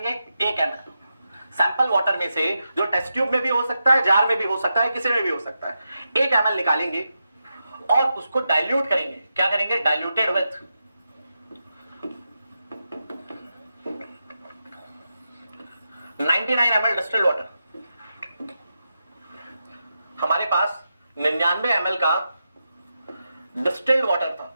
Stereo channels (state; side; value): inverted; both; correlation -0.88